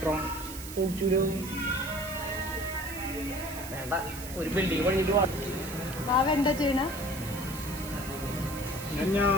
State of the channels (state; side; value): noise; right; hiss, 11 dB below the sound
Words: ഒരു ബിൽഡിംഗ് പണിയിട്ട് ബാബ എന്താ ചെയ്യണ?